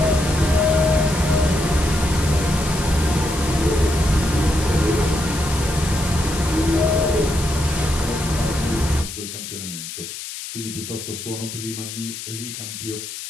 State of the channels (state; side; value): noise; left; hiss, 9 dB below the sound